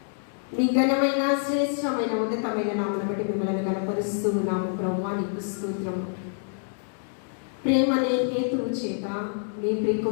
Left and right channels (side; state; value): right; silent; digital silence